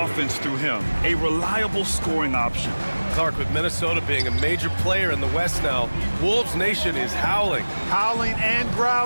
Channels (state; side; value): inverted; both; correlation -1.00